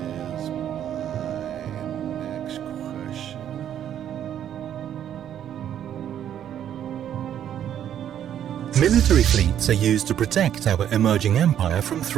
Is my next question. Military fleets are used to protect our emerging empire from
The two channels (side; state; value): left; quieter; 10.2 dB